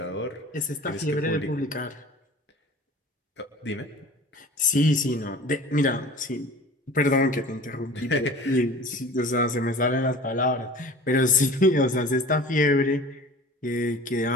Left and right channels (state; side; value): normal; both; correlation 0.41